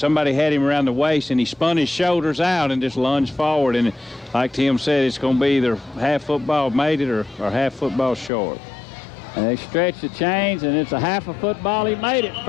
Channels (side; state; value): right; drops out; at 8.3 s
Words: had him around the waist, and he spun his shoulders out and just lunged forward. And like Tim said, it's going to be either half football made it or half football short. And they stretch the chains, and it's a half a football. He made it.